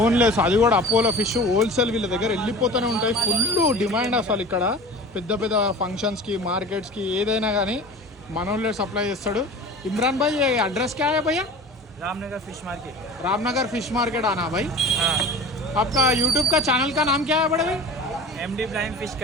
అది కూడా అపోలో ఫిష్ హోల్సేల్ వీళ్ళ దగ్గర వెళ్ళిపోతూనే ఉంటాయి. ఫుల్ డిమాండ్ అసలు ఇక్కడ పెద్ద పెద్ద ఫంక్షన్స్కి, మార్కెట్స్కి ఏదైనా కానీ మనోళ్ళే సప్లై చేస్తాడు. इमरान भाई ये एड्रेस क्या है भैया? Ramnagar fish market. Ramnagar fish market आना भाई. आपका यूट्यूब का ఛానల్ का नाम क्या है बड़े भाई? MD blind fish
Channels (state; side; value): normal; both; correlation 0.38